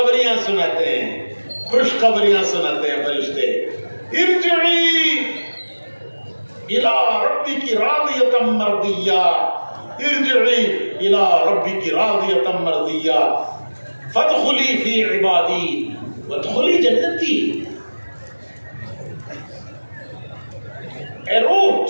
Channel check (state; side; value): inverted; both; correlation -1.00